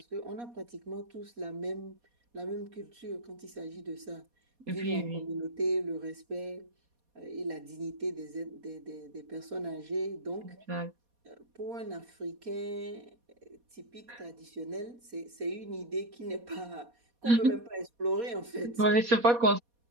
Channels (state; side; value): late; left; 4.2 ms